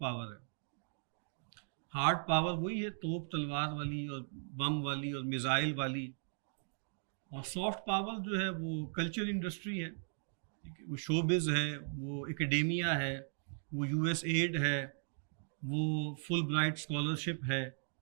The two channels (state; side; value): silent; left; digital silence